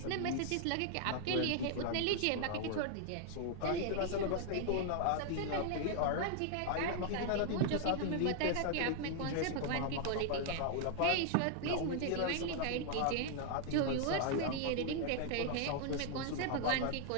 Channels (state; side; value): different; both; correlation 0.00